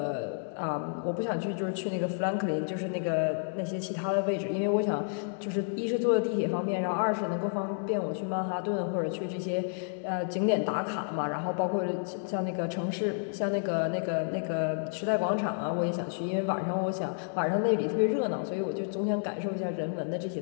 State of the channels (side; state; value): right; silent; digital silence